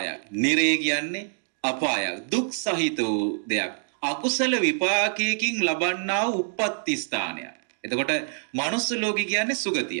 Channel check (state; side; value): silent; left; digital silence